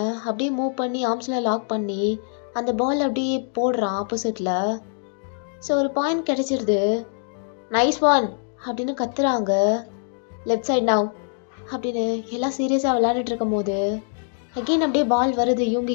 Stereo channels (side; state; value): right; silent; 63 dB below the other